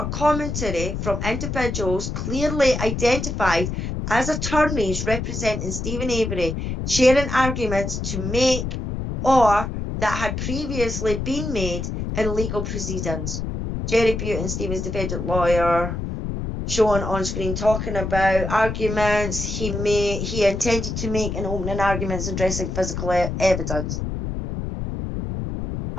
commentary from individuals clearly identified as attorneys representing Stephen Avery, sharing arguments to make or that had previously been made in legal proceedings. Jerry Butin, Stephen's defendant lawyer, shown on screen talking about arguments he intended to make in opening arguments addressing physical evidence.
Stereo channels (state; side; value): noise; left; rumble, 4 dB below the sound